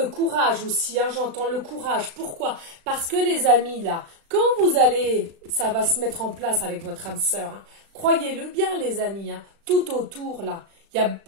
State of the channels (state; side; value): late; left; 36 ms